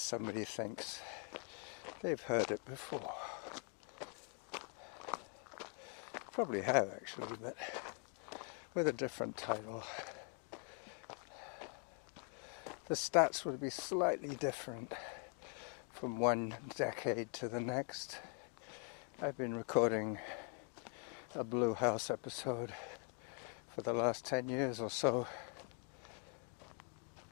thinks they've heard it before. Probably have actually, but with a different title. The stats would be slightly different from one decade to the next. I've been recording a Blue House episode for the last 10 years or so.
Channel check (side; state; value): right; quieter; 38.9 dB